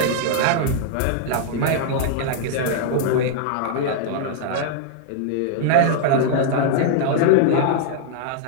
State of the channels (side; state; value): both; different; correlation -0.01